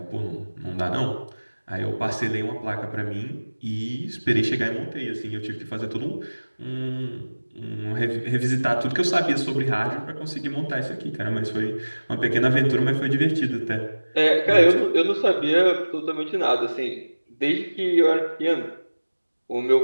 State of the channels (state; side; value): inverted; both; correlation -1.00